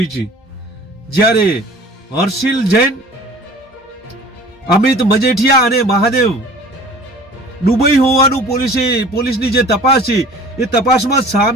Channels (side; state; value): both; normal; correlation 0.46